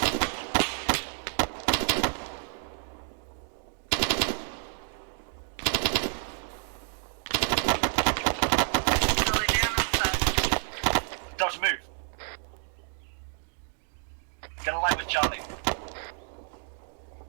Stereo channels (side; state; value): left; silent; 58 dB below the other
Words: Charlie down and set. Delta, move. Get in line with Charlie.